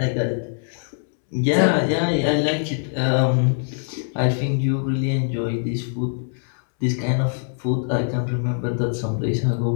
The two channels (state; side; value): silent; right; 64 dB below the other